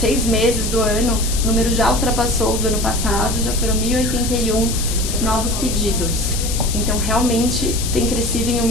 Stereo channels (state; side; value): noise; left; hiss, 5 dB below the sound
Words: meses do ano, o número já ultrapassou do ano passado, já foram 1.081 novos pedidos. Então, realmente tem crescido em